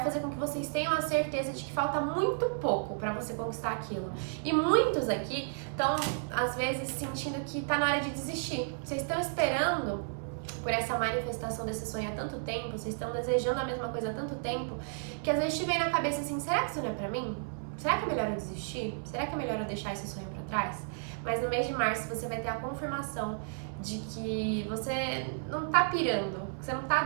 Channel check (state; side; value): silent; left; 56 dB below the other